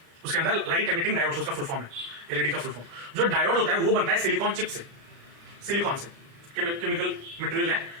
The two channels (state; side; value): late; left; 35 ms